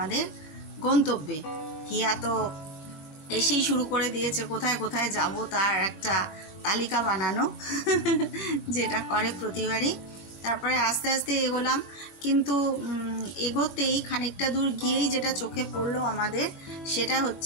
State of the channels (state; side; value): late; right; 21 ms